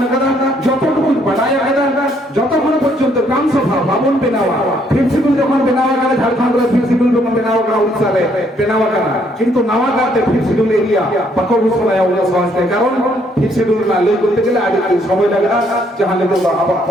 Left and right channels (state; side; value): normal; both; correlation 0.68